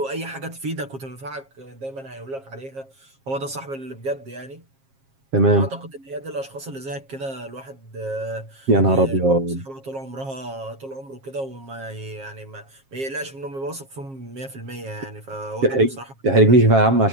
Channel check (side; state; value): left; late; 7.4 ms